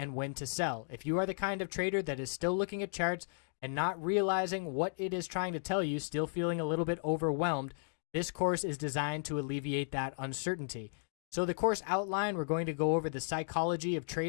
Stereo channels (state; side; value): silent; right; digital silence